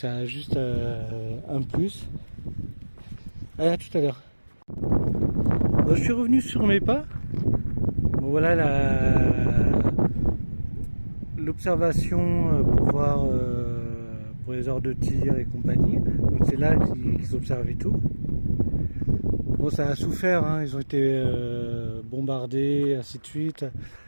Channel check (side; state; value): both; inverted; correlation -1.00